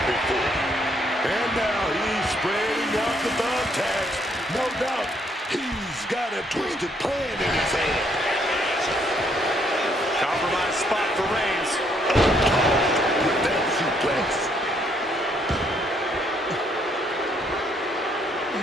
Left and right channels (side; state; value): both; normal; correlation 0.70